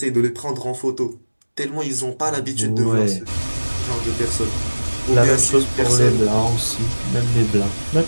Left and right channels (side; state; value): both; inverted; correlation -1.00